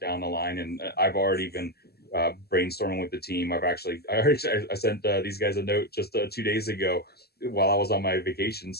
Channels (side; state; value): right; late; 0.46 ms